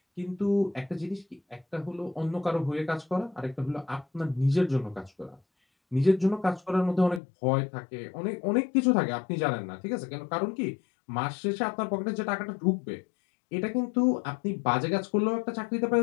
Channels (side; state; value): right; drops out; at 7.2 s